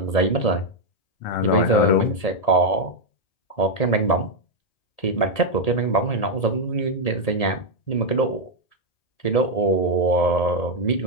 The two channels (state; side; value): late; right; 1.8 ms